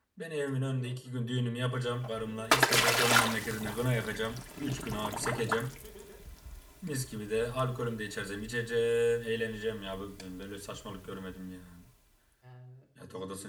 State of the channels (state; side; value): identical; both; correlation 1.00